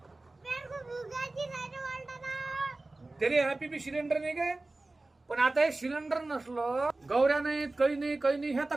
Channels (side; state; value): left; quieter; 3.0 dB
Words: पेट को भुगाची नाही रे वालताना. तरी हॅपी बी सिलेंडर नाही काय. पण आता हे सिलेंडर नसलं गौऱ्या नाहीत काही नाही हे आता